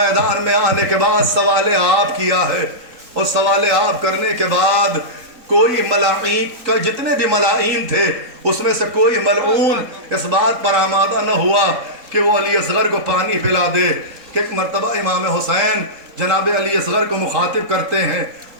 میں آنے کے بعد سوال آپ کیا ہے، اور سوال آپ کرنے کے بعد کوئی ملائین کا جتنے بھی ملائین تھے اس میں سے کوئی ملعون اس بات پر آمادہ نہ ہوا کہ وہ علی اصغر کو پانی پلا دے۔ کہ ایک مرتبہ امام حسین جناب علی اصغر کو مخاطب کرتے ہیں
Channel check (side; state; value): left; late; 3.8 ms